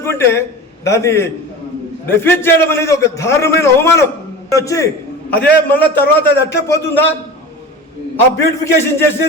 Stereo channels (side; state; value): both; normal; correlation 0.32